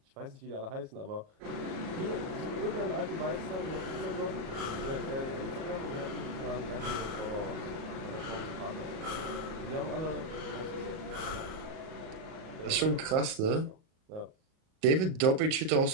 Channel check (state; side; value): late; left; 37 ms